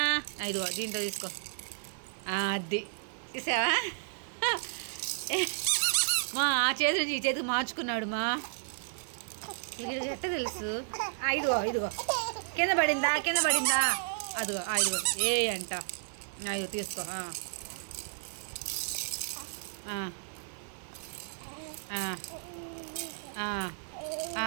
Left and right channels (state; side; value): silent; left; digital silence